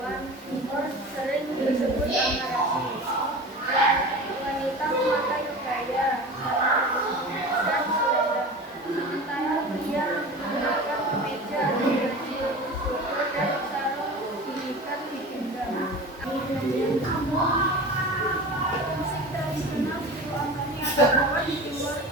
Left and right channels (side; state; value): both; normal; correlation 0.34